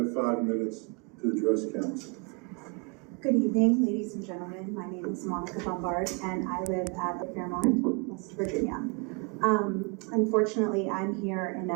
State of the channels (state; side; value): quieter; left; 33.0 dB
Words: 5 minutes to address council. Good evening, ladies and gentlemen. My name is Monica Bombard, and I live at the Fairmont, West Virginia. Unfortunately, I'm here in